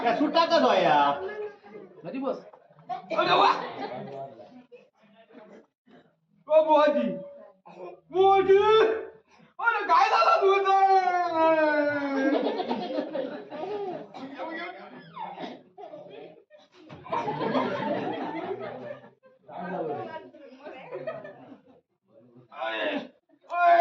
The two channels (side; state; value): both; identical; correlation 1.00